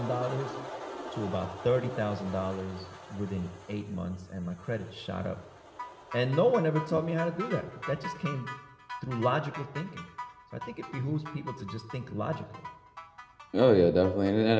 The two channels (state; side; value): identical; both; correlation 1.00